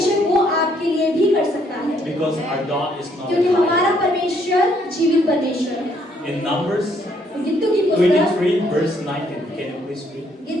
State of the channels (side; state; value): both; normal; correlation 0.69